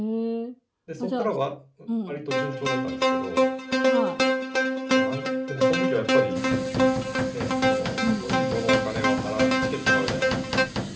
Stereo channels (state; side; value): identical; both; correlation 1.00